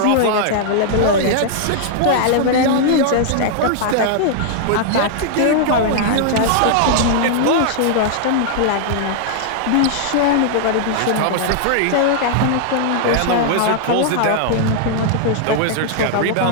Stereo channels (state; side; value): different; both; correlation -0.01